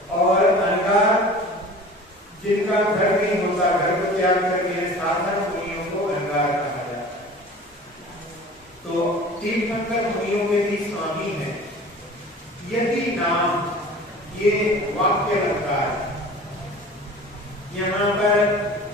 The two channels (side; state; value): both; normal; correlation 0.41